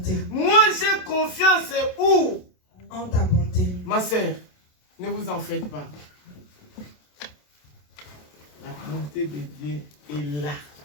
Moi, j'ai confiance où? En ta bonté. Ma sœur, ne vous en faites pas. La bonté de Dieu est là.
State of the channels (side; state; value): right; late; 27 ms